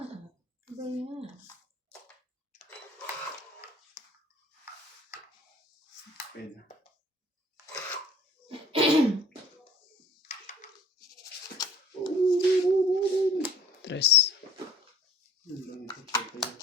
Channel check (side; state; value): both; normal; correlation 0.51